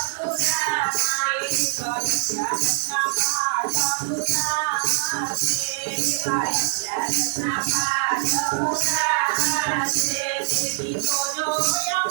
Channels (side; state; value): left; silent; digital silence